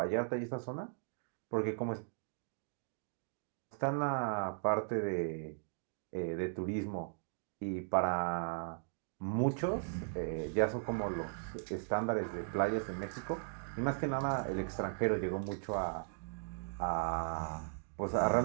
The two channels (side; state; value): left; silent; digital silence